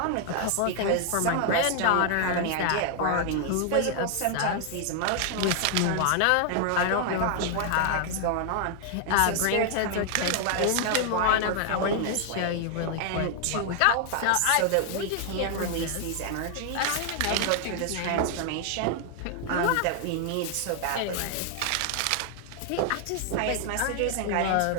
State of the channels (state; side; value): different; both; correlation 0.00